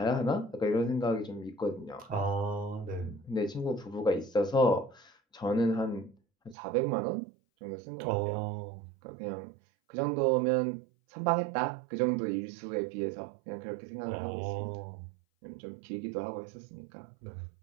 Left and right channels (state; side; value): drops out; left; at 6.6 s